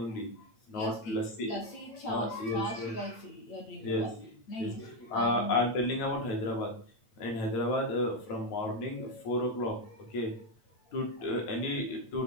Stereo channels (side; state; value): right; late; 8.7 ms